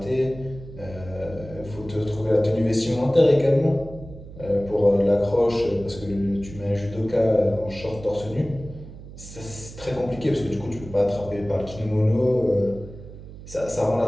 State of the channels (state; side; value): noise; right; hum, 15 dB below the sound